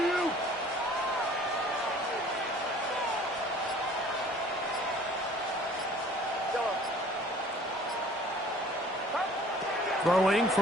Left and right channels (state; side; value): normal; both; correlation 0.52